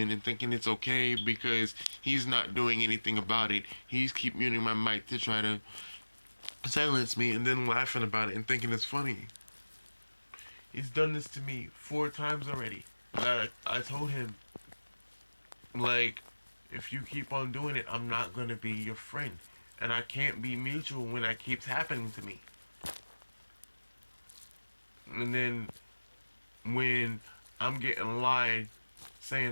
and thinking it's okay because he's not doing anything about it. He's keep muting my mic to try to silence me, and then laughing about it and thinking it's funny. He's done this to me 4 times already. I told him, like, if you keep on doing it, I'm not gonna be your friend, and I can't be mutual when that keeps happening to me. And then when I'm getting lied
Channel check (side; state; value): both; inverted; correlation -1.00